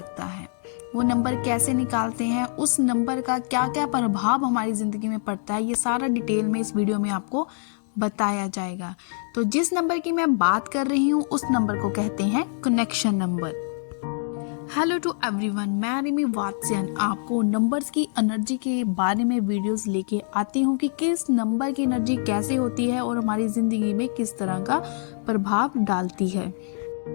है। वो नंबर कैसे निकालते हैं, उस नंबर का क्या क्या प्रभाव हमारी ज़िंदगी में पड़ता है, ये सारा डिटेल में इस वीडियो में आपको बताया जाएगा। तो जिस नंबर की मैं बात कर रही हूँ उस नंबर को कहते हैं connection number. Hello to everyone, मैं रिमी वात्स्यन आपको नंबर्स की एनर्जी के बारे में वीडियोस लेके आती हूँ कि किस नंबर की एनर्जी कैसे होती है और हमारी ज़िंदगी में किस तरह का प्रभाव डालती है।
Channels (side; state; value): right; silent; digital silence